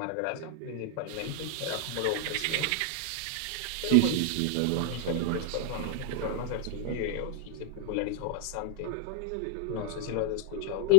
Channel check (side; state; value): both; different; correlation -0.01